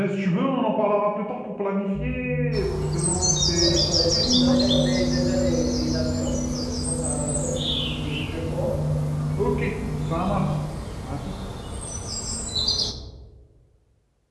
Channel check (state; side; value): identical; both; correlation 1.00